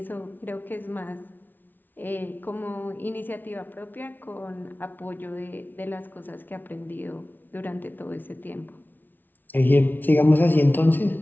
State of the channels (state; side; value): late; right; 0.089 ms